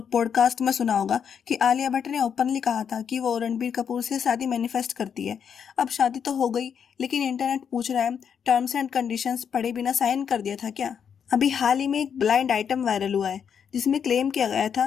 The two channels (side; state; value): right; quieter; 7.5 dB